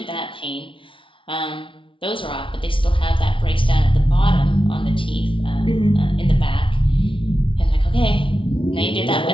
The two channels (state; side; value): late; right; 0.25 ms